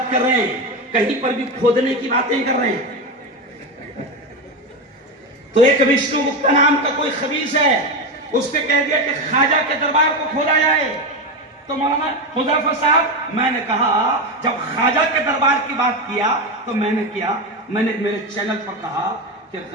کر رہے ہیں، کہیں پر بھی کھودنے کی باتیں کر رہے ہیں. تو ایک وشنو گپتا نام کا کوئی خبیث ہے، اس نے کہہ دیا کہ خواجہ کے دربار کو کھودا جائے. تو مولانا حذیفہ صاحب، میں نے کہا جب خواجہ کے دربار کی بات کیا تو میں نے میرے چینل پر کہا کہ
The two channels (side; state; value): both; normal; correlation 0.16